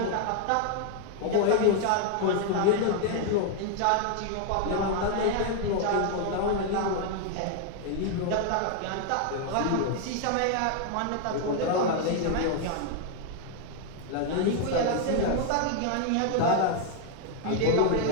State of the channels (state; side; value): different; both; correlation 0.00